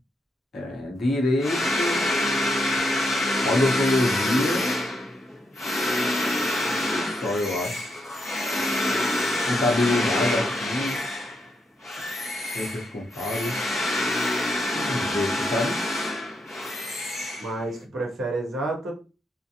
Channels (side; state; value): both; normal; correlation 0.80